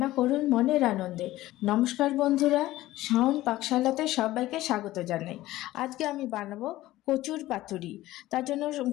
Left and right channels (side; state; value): right; quieter; 16.2 dB